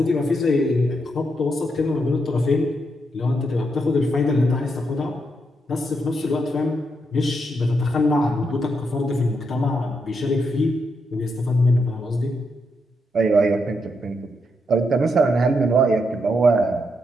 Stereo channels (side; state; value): both; normal; correlation 0.81